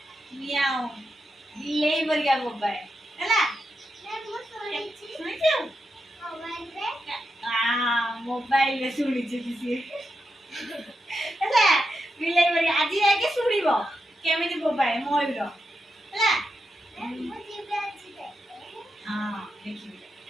ମିଆଉ ବିଲେଇ ପରିକା ବୋବାଏ ହେଲା ଶୁଣିଛୁ ମୋବାଇଲରେ ଶୁଣିଛୁ ସିଏ ହେଲା ବିଲେଇ ପରିକା ଆଜି ଯାଇକି ଶୁଣିବ କେମିତି ବୋବାଏ ମୟୂର ହେଲା हाँ देखिए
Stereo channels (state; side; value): normal; both; correlation 0.87